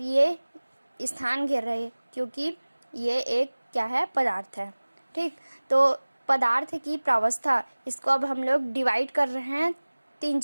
स्थान घेर रहे हैं क्योंकि ये एक क्या है, पदार्थ है। ठीक, तो पदार्थ की प्रावस्था, इसको अब हम लोग डिवाइड कर रहे हैं 3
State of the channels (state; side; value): inverted; both; correlation -1.00